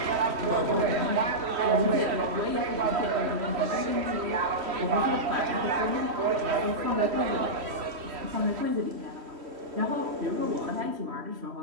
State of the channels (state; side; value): late; left; 3.1 ms